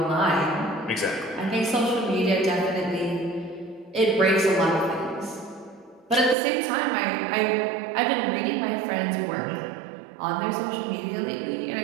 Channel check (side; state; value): left; drops out; at 6.4 s